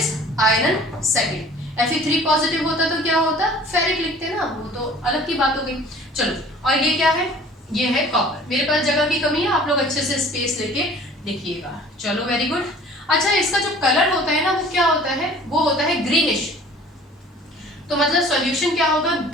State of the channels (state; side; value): normal; both; correlation 0.48